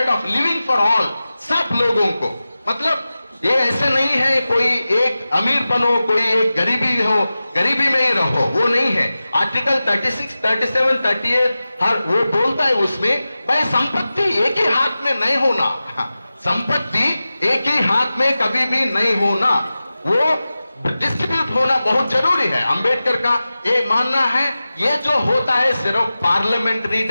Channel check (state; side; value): inverted; both; correlation -0.95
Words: of living for all, सब लोगों को, मतलब ये ऐसे नहीं है कोई एक अमीर बनो कोई एक गरीबी हो, गरीबी में ही रहो, वो नहीं है। आर्टिकल 36, 37, 38 हर वो बोलता है उसमें भाई संपत्ति एक ही हाथ में नहीं होना, संपत्ति एक ही हाथ में कभी भी नहीं होना, वो डिस्ट्रीब्यूट होना बहुत जरूरी है। अंबेडकर का ये मानना है ये जो होता है सिर्फ पार्लियामेंट्री